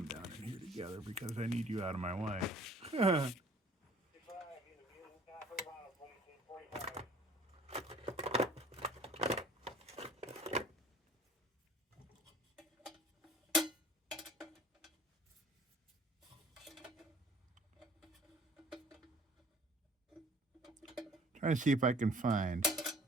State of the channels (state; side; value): normal; both; correlation 0.52